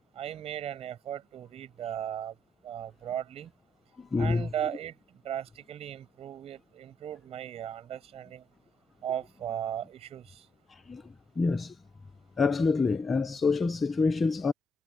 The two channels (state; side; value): normal; both; correlation 0.78